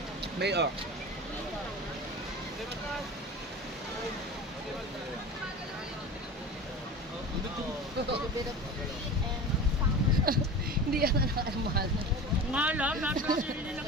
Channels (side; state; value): both; normal; correlation 0.33